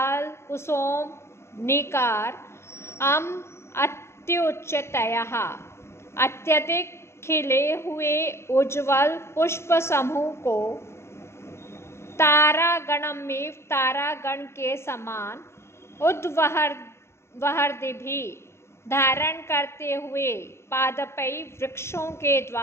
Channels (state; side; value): late; right; 0.13 ms